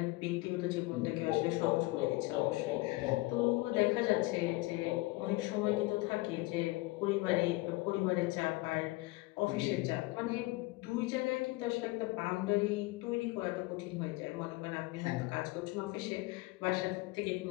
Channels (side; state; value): right; quieter; 21.8 dB